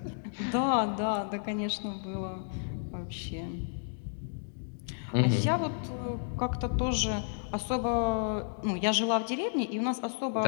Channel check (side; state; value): right; silent; digital silence